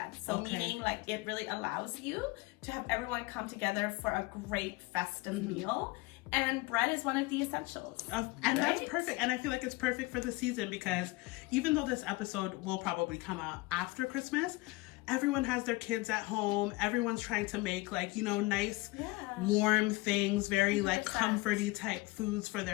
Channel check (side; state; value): right; quieter; 22.5 dB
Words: So meaning like it really allows you to have everyone come together for a great festive meal. And bread is one of the essentials. And that's perfect. And I feel like it's perfect for the season because even though this episode will probably come out after Christmas, everyone has their kids at home. Everyone's trying to make like, you know, nice, warm things, very 100%. Like comforty type foods for